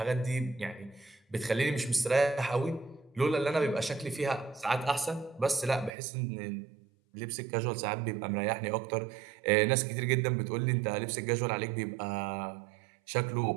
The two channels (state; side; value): drops out; left; at 6.0 s